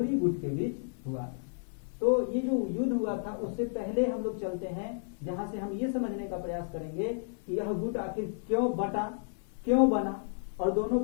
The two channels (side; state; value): right; silent; digital silence